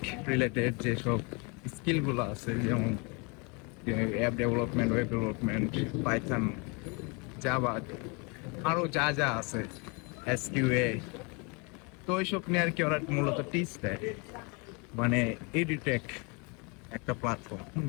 রিলেটেড যেসব স্কিলগুলো আছে, যেমন app development, web development, Python, Java, আরো যা যা আছে, এসকিউএ। তো ওইসব নিয়ে আর কি ওরা মূলত টিচ দেয়, মানে এডিটেক একটা প্ল্যাটফর্ম।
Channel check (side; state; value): right; quieter; 31.5 dB